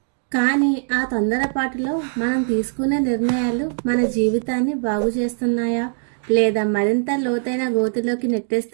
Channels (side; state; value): left; silent; digital silence